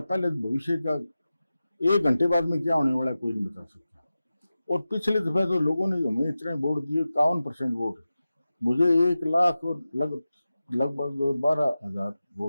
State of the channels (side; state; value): both; inverted; correlation -0.94